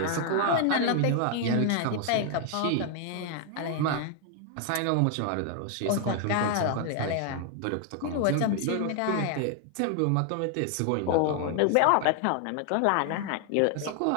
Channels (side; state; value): both; different; correlation 0.00